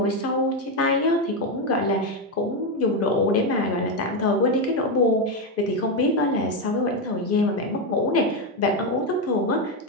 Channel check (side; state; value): both; normal; correlation 0.08